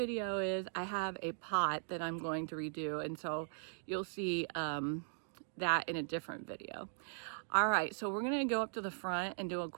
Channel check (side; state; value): left; silent; digital silence